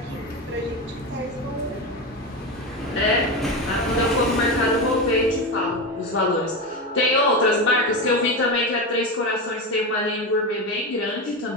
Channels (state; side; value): normal; both; correlation 0.18